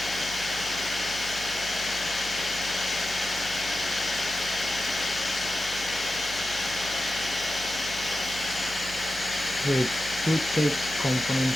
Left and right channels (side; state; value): right; noise; hum, 14 dB below the sound